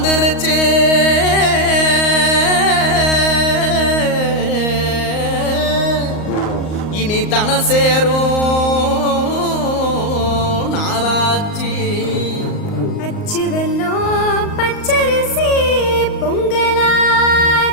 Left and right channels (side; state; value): right; late; 38 ms